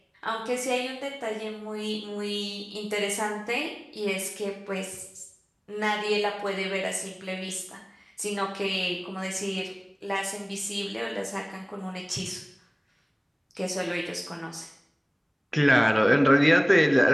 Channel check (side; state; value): both; identical; correlation 1.00